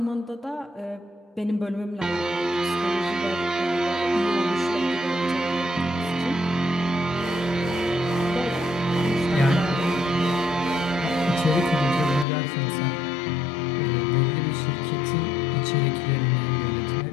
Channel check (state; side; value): drops out; right; at 12.2 s